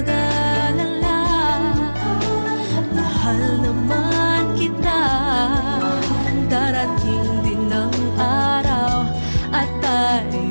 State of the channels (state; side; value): inverted; both; correlation -1.00